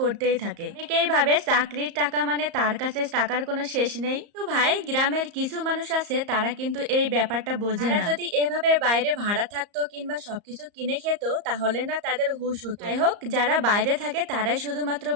থাকে। অনেকেই ভাবে চাকরির টাকা মানে তার কাছে টাকার কোনো শেষ নেই। তো ভাই, গ্রামের কিছু মানুষ আছে তারা কিন্তু এই ব্যাপারটা বোঝে না। যদি এভাবে বাইরে ভাড়া থাকতো কিংবা সবকিছু কিনে খেত তাহলে না তাদের হুঁশ হতো। যাই হোক, যারা বাইরে থাকে তারাই শুধুমাত্র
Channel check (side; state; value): left; late; 34 ms